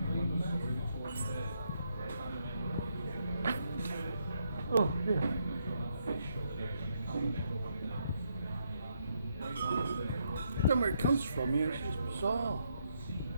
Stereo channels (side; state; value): both; inverted; correlation -0.77